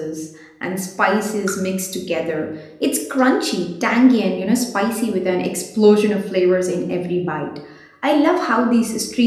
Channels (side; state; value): both; identical; correlation 1.00